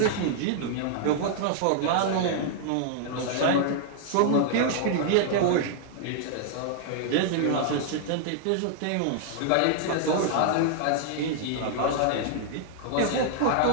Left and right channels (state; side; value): different; both; correlation -0.01